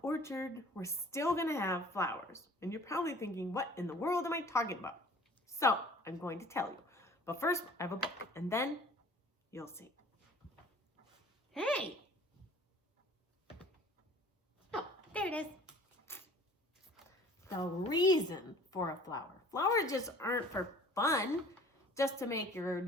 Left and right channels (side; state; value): both; normal; correlation 0.49